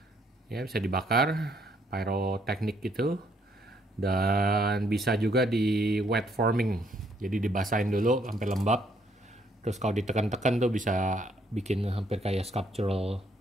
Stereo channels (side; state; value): both; normal; correlation 0.69